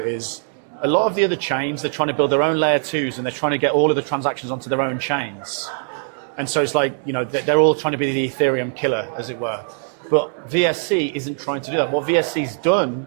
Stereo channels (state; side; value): silent; left; digital silence